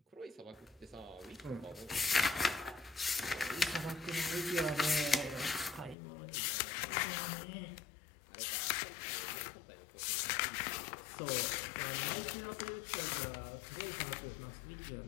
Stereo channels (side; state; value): right; drops out; at 6.0 s